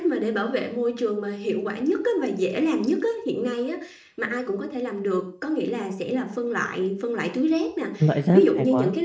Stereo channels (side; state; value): both; identical; correlation 1.00